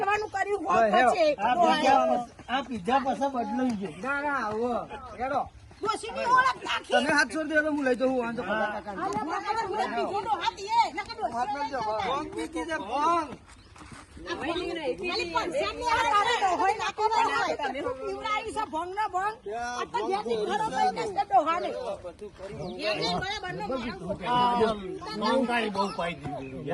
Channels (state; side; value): identical; both; correlation 1.00